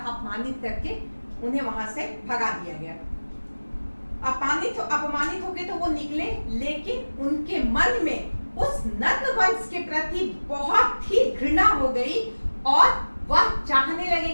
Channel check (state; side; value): inverted; both; correlation -1.00